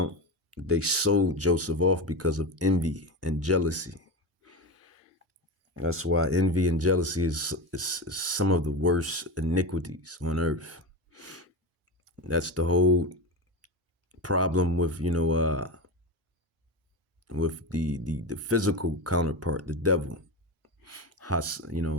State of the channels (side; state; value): both; normal; correlation 0.20